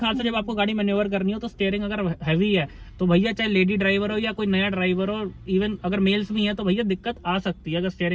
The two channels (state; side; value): identical; both; correlation 1.00